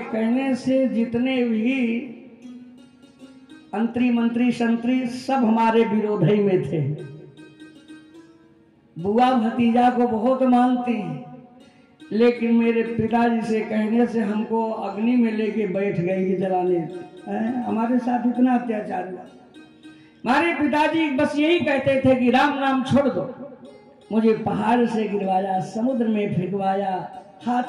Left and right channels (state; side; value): identical; both; correlation 1.00